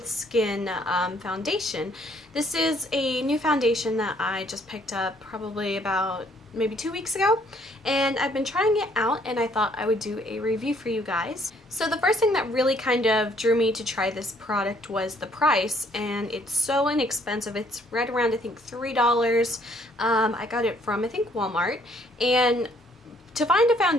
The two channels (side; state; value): both; normal; correlation 0.64